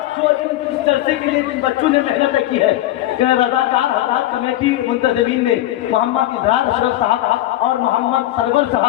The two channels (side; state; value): right; quieter; 14.7 dB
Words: جو اس جلسے کے لیے جن بچوں نے محنت کی ہے، رضاکار حضرات کمیٹی منتظمین نے محمد اظہار اشرف صاحب اور محمد سرور